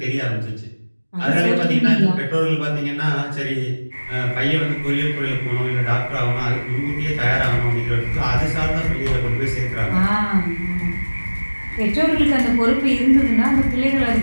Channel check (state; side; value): inverted; both; correlation -1.00